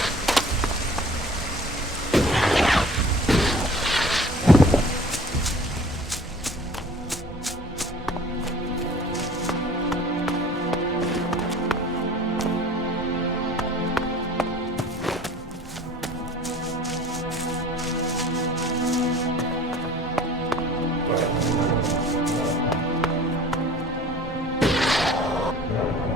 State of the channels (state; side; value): normal; both; correlation 0.47